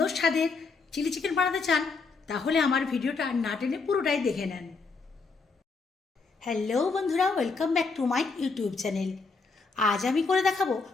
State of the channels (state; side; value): quieter; right; 4.4 dB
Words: স্বাদের চিলি চিকেন বানাতে চান তাহলে আমার ভিডিওটা না টেনে পুরোটাই দেখে নেন। হ্যালো বন্ধুরা, welcome back to my YouTube channel. আজ আমি করে দেখাবো